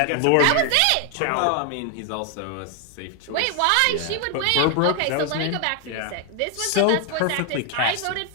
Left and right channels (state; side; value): different; both; correlation 0.01